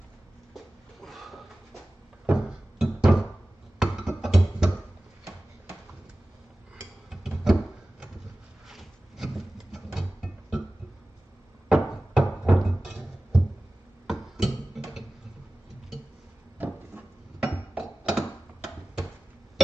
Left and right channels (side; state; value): both; normal; correlation 0.97